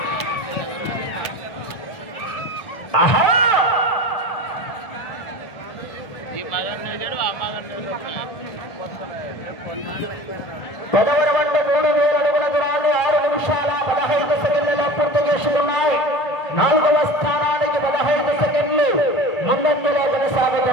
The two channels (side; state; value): right; late; 1.7 ms